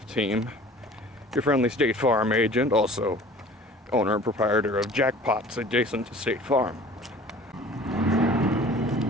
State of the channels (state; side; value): normal; both; correlation 0.46